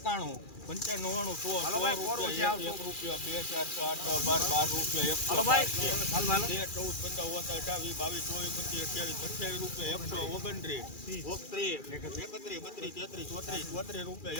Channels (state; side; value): late; right; 2.4 ms